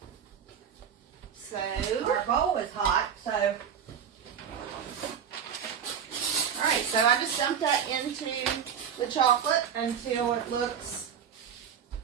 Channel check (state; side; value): quieter; left; 7.9 dB